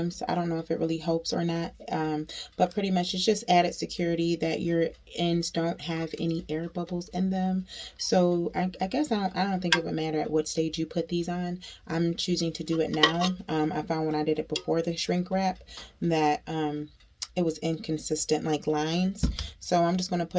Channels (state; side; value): identical; both; correlation 1.00